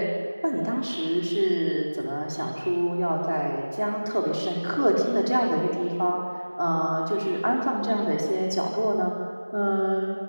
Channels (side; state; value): both; inverted; correlation -1.00